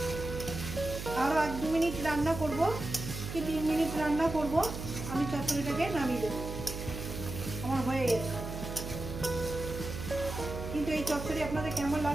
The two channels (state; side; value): noise; right; hum, 7 dB below the sound